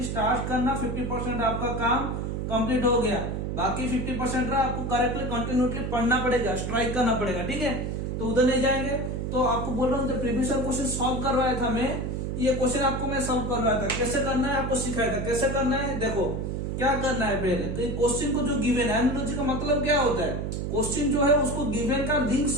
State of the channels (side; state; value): right; noise; hum, 2 dB below the sound